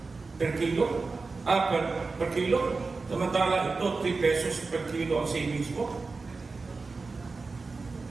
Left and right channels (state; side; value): quieter; left; 4.0 dB